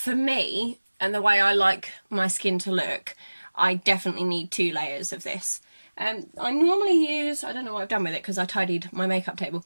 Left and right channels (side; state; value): both; inverted; correlation -1.00